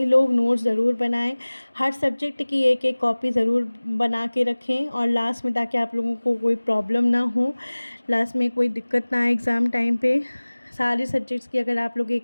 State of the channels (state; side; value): inverted; both; correlation -1.00